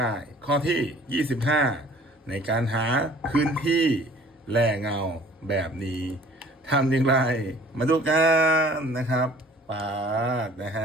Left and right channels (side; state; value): both; normal; correlation 0.51